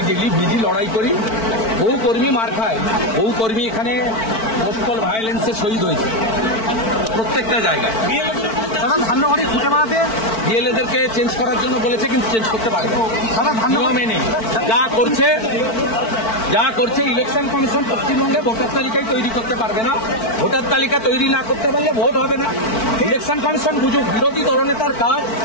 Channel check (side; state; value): right; late; 4.5 ms